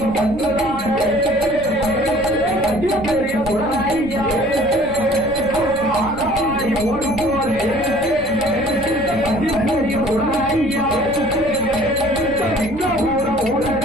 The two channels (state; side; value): noise; left; rumble, 15 dB below the sound